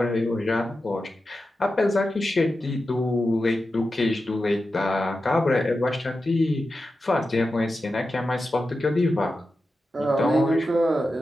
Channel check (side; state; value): both; normal; correlation 0.91